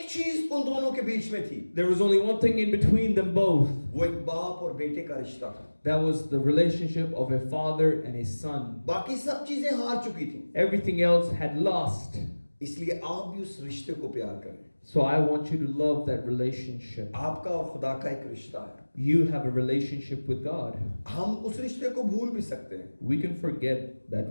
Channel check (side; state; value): both; inverted; correlation -1.00